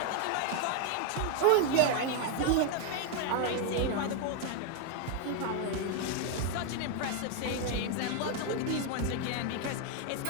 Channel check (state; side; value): different; both; correlation 0.01